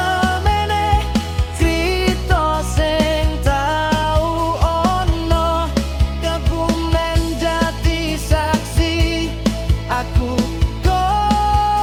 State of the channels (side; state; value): both; identical; correlation 1.00